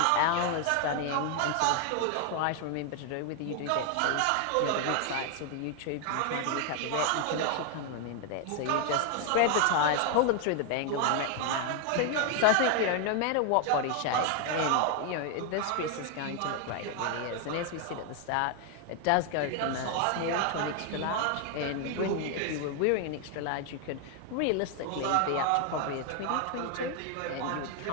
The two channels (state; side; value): different; both; correlation 0.01